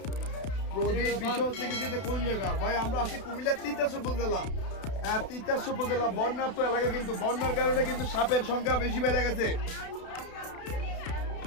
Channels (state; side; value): late; right; 32 ms